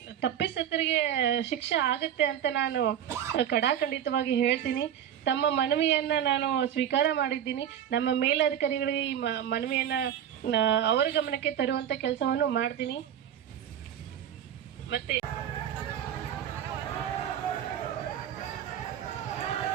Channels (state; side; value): quieter; left; 9.8 dB